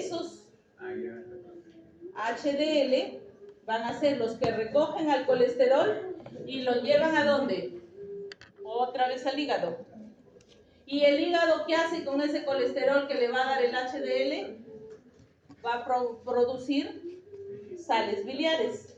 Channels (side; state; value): both; identical; correlation 1.00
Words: HDL van a ser los que recogen al colesterol y lo llevan ¿a dónde? Otra vez al hígado. ¿Y el hígado qué hace con ese colesterol que le va a dar el HDL? Va a producir sales biliares.